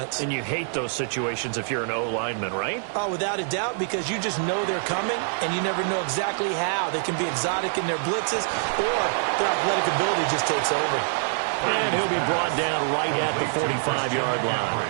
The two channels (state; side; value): silent; left; 61 dB below the other